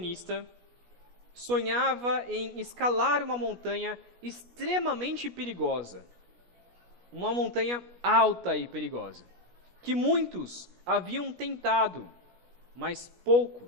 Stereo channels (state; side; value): late; left; 17 ms